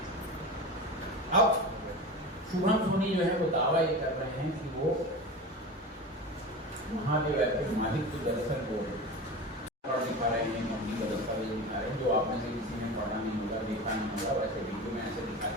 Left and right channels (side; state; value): both; normal; correlation 0.29